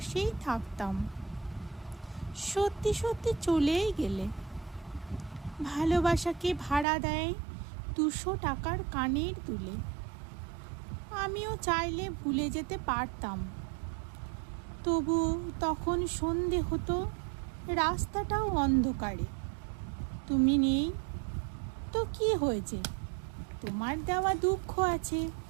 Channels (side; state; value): left; drops out; at 6.9 s